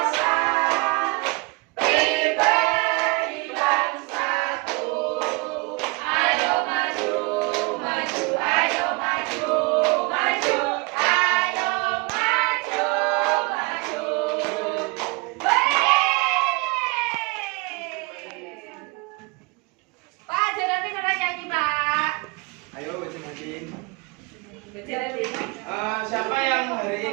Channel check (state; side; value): quieter; left; 27.5 dB